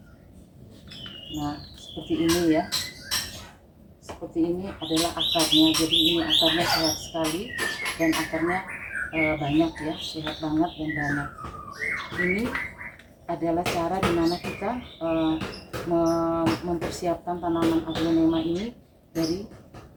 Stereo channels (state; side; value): identical; both; correlation 1.00